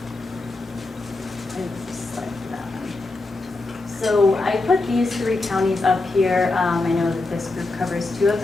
So I put these 3 counties up here. I know that this group covers 2 of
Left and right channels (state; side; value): quieter; right; 3.2 dB